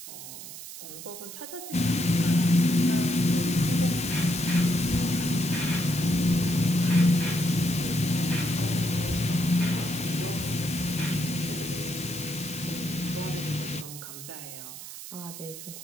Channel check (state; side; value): noise; right; hiss, 12 dB below the sound